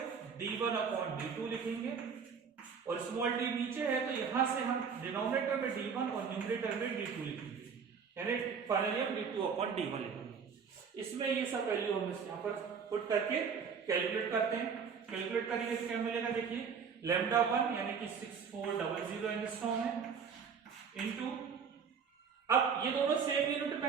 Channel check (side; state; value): left; quieter; 6.3 dB